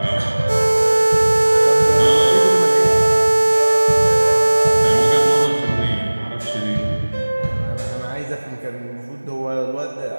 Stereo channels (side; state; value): both; inverted; correlation -1.00